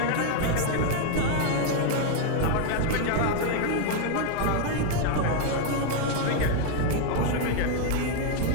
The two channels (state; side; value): different; both; correlation 0.01